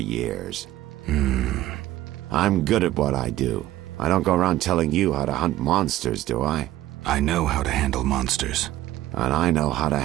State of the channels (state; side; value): quieter; left; 15.1 dB